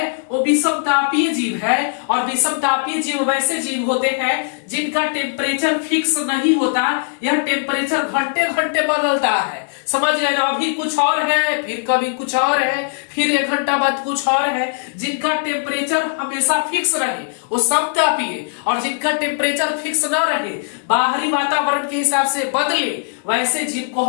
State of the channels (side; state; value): right; silent; digital silence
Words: वो विषमतापीय जीव है, और विषमतापीय जीव वैसे जीव होते हैं जिनका टेम्परेचर फिक्स नहीं होता, यह टेम्परेचर घंटे घंटे बदलता है, समझ गए ना। अभी कुछ और है, फिर कभी कुछ और है, फिर 1 घंटा बाद कुछ और है जिनका टेम्परेचर हमेशा फिक्स रहे वो समतापीय, और जिनका टेम्परेचर फिक्स न रहे बाहरी वातावरण के हिसाब से बदले वैसे जीव को